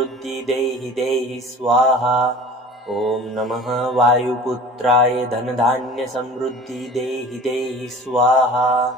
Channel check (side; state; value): both; normal; correlation 0.42